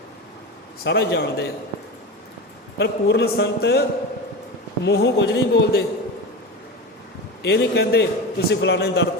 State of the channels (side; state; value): both; normal; correlation 0.25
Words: ਸਾਰਾ ਜਾਣਦੇ ਆ। ਪਰ ਪੂਰਨ ਸੰਤ ਮੂੰਹੋਂ ਕੁਝ ਨਹੀਂ ਬੋਲਦੇ। ਇਹ ਨਹੀਂ ਕਹਿੰਦੇ ਤੁਸੀਂ ਫਲਾਣੇ ਦਰ